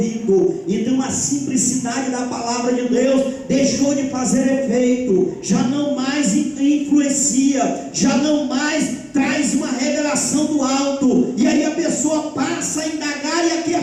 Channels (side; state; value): both; identical; correlation 1.00